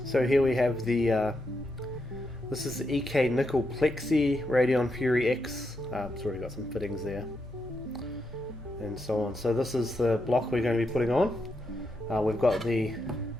So here we have this is the EK Nickel Plexi Radeon Fury X. It's already got some fittings there and so on. So this is the block we're going to be putting on. We've got the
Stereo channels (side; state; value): both; normal; correlation 0.83